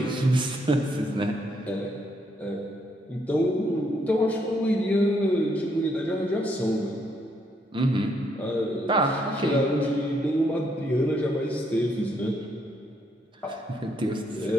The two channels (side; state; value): both; normal; correlation 0.74